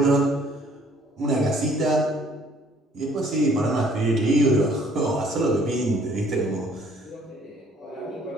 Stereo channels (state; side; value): normal; both; correlation 0.59